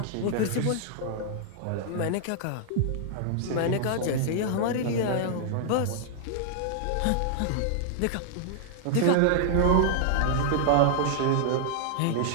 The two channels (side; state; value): both; different; correlation -0.01